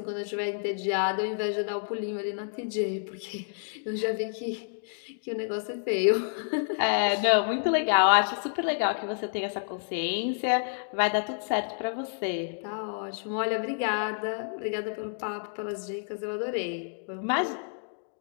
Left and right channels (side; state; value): right; silent; digital silence